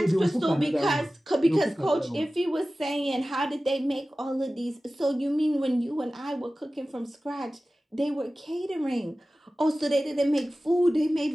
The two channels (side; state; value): both; normal; correlation 0.96